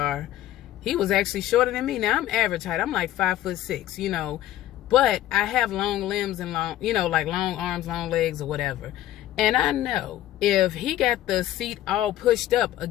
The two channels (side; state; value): right; quieter; 13.7 dB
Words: he was actually shorter than me. Now I'm average height, I'm like 5'6", you know, but I have long limbs and long, you know, like long arms, long legs or whatever. And I know if he got the seat all pushed up